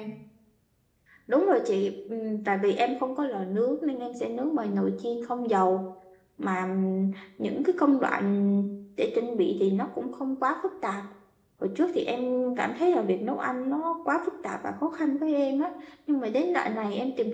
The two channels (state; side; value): identical; both; correlation 1.00